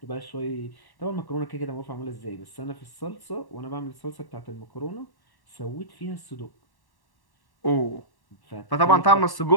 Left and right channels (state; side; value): late; right; 1.1 ms